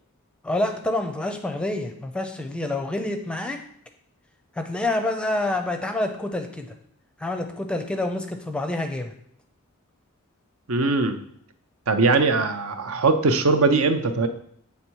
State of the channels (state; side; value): normal; both; correlation 0.24